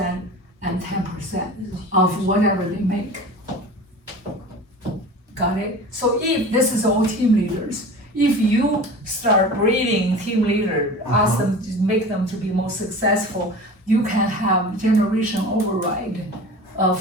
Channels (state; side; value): normal; both; correlation 0.36